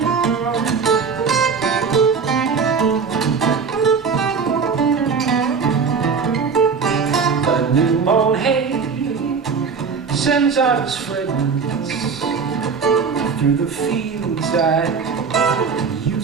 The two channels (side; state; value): left; quieter; 5.6 dB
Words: The new mown hay sends out its fragrance through the fields I